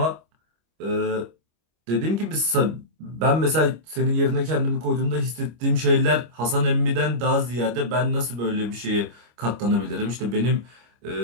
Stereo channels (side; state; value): left; late; 25 ms